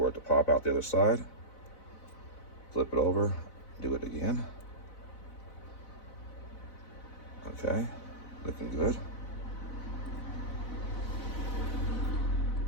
it to pop out the other side. Flip it over. Do it again. Okay. Looking good.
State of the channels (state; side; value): late; right; 4.0 ms